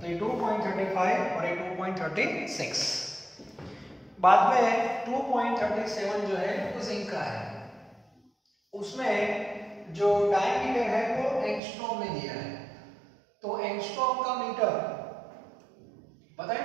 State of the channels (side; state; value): left; drops out; at 11.6 s